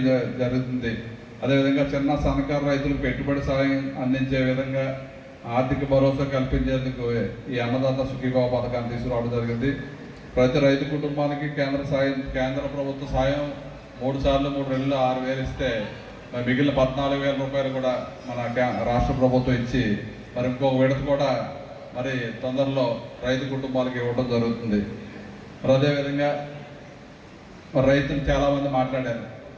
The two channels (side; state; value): both; identical; correlation 1.00